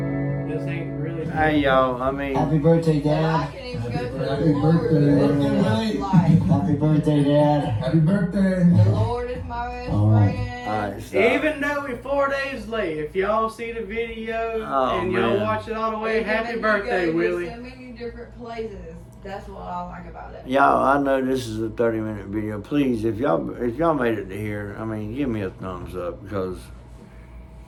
This ain't really. Hey y'all, I mean, Happy birthday, I Dad. can even go to Happy the Lord birthday. with Birthday, it. Like, Happy birthday, Dad. Happy birthday. the Lord is my best All right. friend. alright, stop. Even though we're 4 days late, if y'all see the video Oh, and y'all man. watch it all the way, Even happy if you birthday, go to Willie. So many different places. That's what I like about it. Y'all, I know this is a 30-minute video. Please, if y'all made it to here, I mean, give me a thumbs up because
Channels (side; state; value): both; identical; correlation 1.00